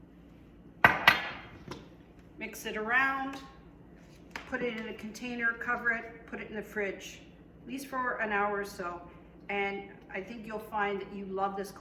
mix it around, put it in a container, cover it, put it in the fridge, at least for an hour or so. And I think you'll find that you love this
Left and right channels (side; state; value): both; identical; correlation 1.00